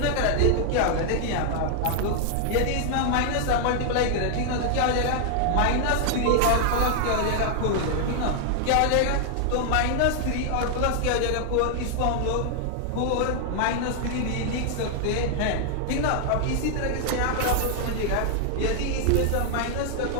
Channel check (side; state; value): both; different; correlation 0.00